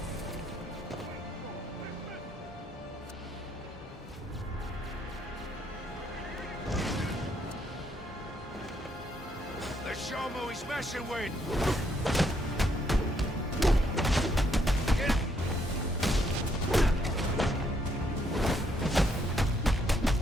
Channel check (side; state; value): both; normal; correlation 0.73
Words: Let's show him who he's messing with!